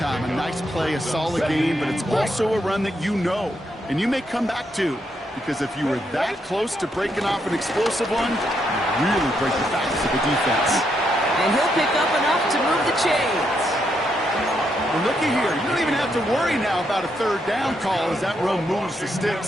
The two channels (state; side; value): normal; both; correlation 0.78